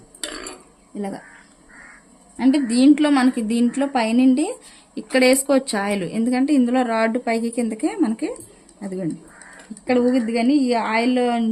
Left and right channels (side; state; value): both; identical; correlation 1.00